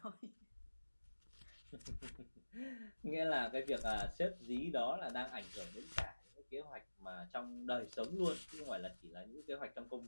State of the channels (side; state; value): both; inverted; correlation -1.00